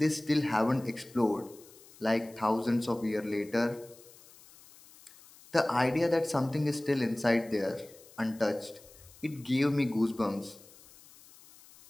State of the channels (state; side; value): noise; left; hiss, 23 dB below the sound